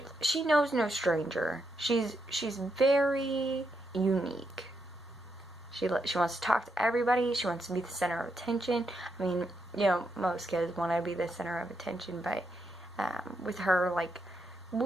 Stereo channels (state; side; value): normal; both; correlation 0.81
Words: she knows no stranger. She's very unique. She wants to talk to everybody. She wants to be the center of attention. I mean, most kids want to be the center of attention, but with her,